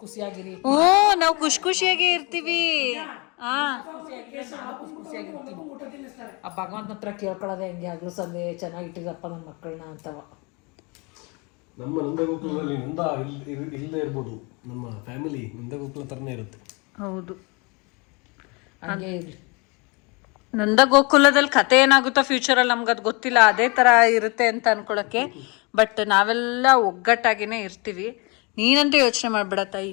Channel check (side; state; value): right; quieter; 29.3 dB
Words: ಖುಷಿಯಾಗಿರಿ. ನಾವು ಖುಷಿಯಾಗಿ ಇರ್ತೀವಿ. ಆ ಭಗವಂತನ ಹತ್ರ ಕೇಳ್ಕೊಳ್ಳೋದೆ ಹೆಂಗೆ ಆಗ್ಲೂ ಸಂದೆ ಚೆನ್ನಾಗಿಟ್ಟಿರಪ್ಪ ನನ್ನ ಮಕ್ಕಳನ್ನ ಅಂತವ. ನಮ್ಮ ನಂದಗೋಕುಲದಲ್ಲಿ ನಂದ ಇಲ್ಲದೆ ಇರ್ಬೋದು, ನಮ್ಮ ಫ್ಯಾಮಿಲಿ ನಂದಗೋಕುಲ ಥರನೇ ಇರುತ್ತೆ. ಹೌದು, ಹಂಗೆ ಇರಲಿ. ನಂದ ಗೋಕುಲದಲ್ಲಿ ಕತೆ ಏನಾಗುತ್ತೋ ಫ್ಯೂಚರಲ್ಲಿ ನಮ್ಗೆ ಅದು ಗೊತ್ತಿಲ್ಲ, ಅದೇ ಥರ ಇರುತ್ತೆ ಅಂತ ಅನ್ಕೊಳಕ್ಕೆ. ಬಟ್ ನಾವೆಲ್ಲ ಒಗ್ಗಟ್ಟಾಗಿನೇ ಇರ್ತೀವಿ. ನೀನಂತೂ ಯೋಚನೆ ಮಾಡಬೇಡ